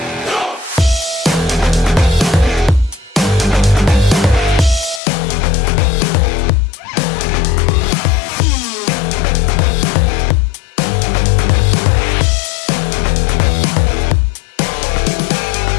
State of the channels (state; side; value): drops out; right; at 5.0 s